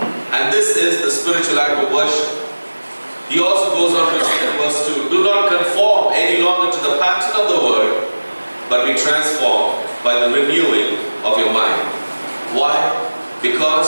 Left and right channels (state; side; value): inverted; both; correlation -1.00